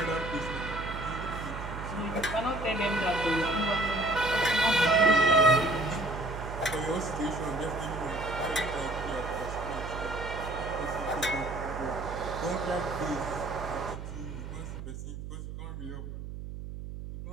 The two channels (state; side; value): noise; right; hum, 9 dB below the sound